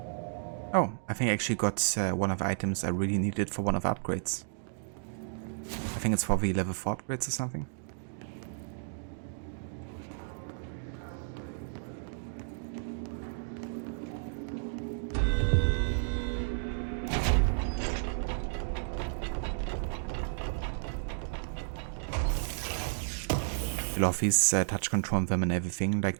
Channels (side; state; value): left; silent; digital silence